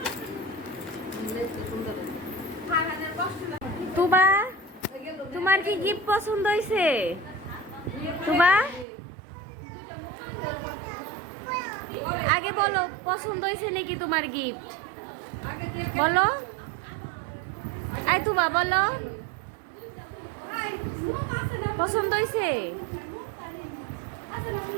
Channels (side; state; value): left; drops out; at 8.8 s